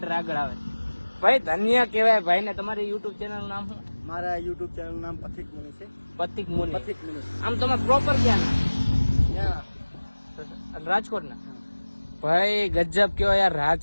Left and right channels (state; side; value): inverted; both; correlation -1.00